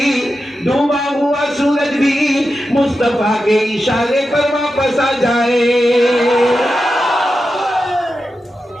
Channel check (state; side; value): normal; both; correlation 0.90